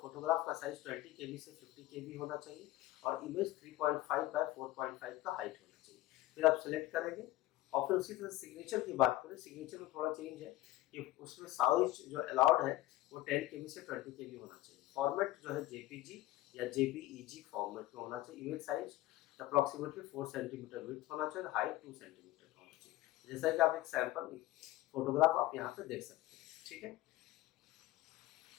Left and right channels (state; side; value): quieter; right; 16.4 dB